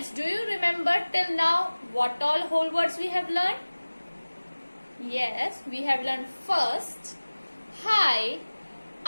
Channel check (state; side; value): inverted; both; correlation -1.00